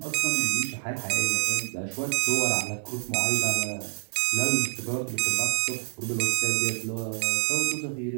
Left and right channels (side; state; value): left; silent; 60 dB below the other